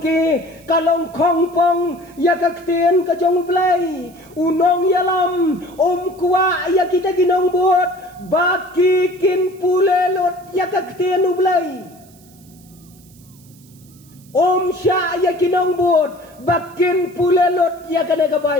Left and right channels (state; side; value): noise; right; hiss, 27 dB below the sound